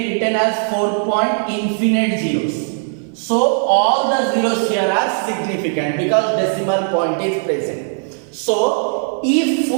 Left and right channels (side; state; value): left; silent; 56 dB below the other